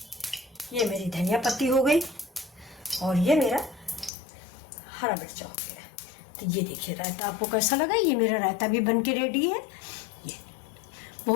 ये मेरी धनिया पत्ती हो गई और ये मेरा हरा मिर्चा हो गया। तो ये देखिए रायता आपको कैसा लगा। ये मेरा रायता भी बन के रेडी है। ये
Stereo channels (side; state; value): right; drops out; at 4.1 s